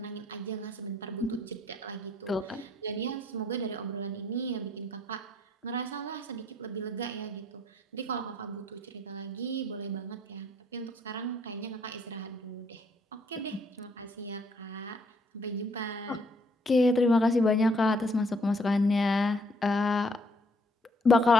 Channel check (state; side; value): normal; both; correlation 0.66